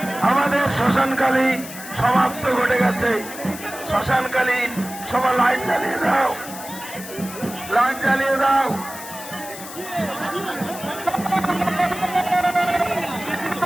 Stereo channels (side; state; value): left; noise; hiss, 13 dB below the sound